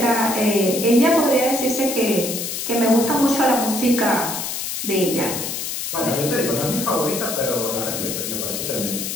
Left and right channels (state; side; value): noise; left; hiss, 4 dB below the sound